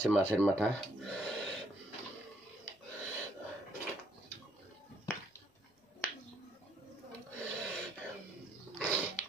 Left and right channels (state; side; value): normal; both; correlation 0.69